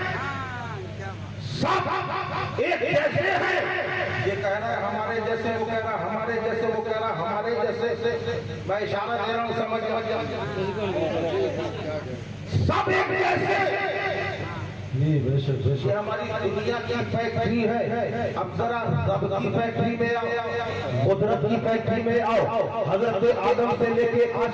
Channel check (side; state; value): both; identical; correlation 1.00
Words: सब एक जैसे हैं। ये कह रहा है हमारे जैसे, वो कह रहा है हमारे जैसे, वो कह रहा है हमारे जैसे। मैं इशारा दे रहा हूँ, समझ सब एक जैसे। ये हमारी दुनिया की फैक्ट्री है। अब जरा रब की फैक्ट्री में आओ, कुदरत की फैक्ट्री में आओ। हजरत आदम से लेके आज